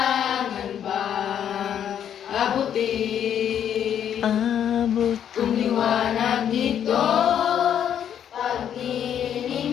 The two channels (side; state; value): right; quieter; 9.3 dB